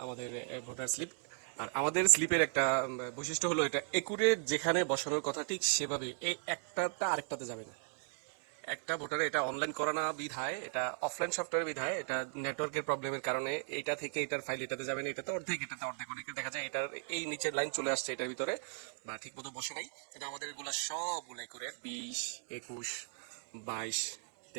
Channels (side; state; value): left; silent; 53 dB below the other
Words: আমাদের ভোটার স্লিপ। আর আমাদের স্লিপের একটা বৈশিষ্ট্য হলো এটা একুরেট, যেখানে বসানোর কথা ঠিক সেভাবে, এই একটাটা আরেকটাতে যাবে না। একটা ভোটারে এটা অনলাইন করা না বিধায়, এটা অফলাইন সফটওয়্যার বিধায়, এটা নেটওয়ার্কের প্রবলেমের কারণে এটা থেকে এটার ফাইল এটাতে যাবে না, এটাতে অর্ধেক অনেকে দেখা যায় এটার এই নিচের লাইন চলে আসছে এটার ভিতরে, বা ঠিক মতো বসে নাই। কিন্তু আমাদের এগুলো সবগুলো করে 20, 21, 22,